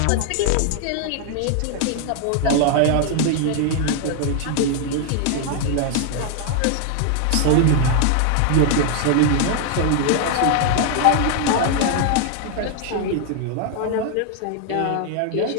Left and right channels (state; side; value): different; both; correlation 0.00